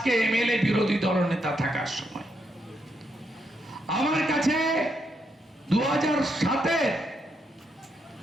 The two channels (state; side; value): normal; both; correlation 0.79